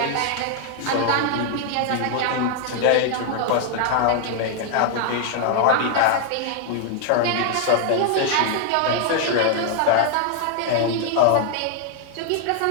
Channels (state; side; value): different; both; correlation 0.00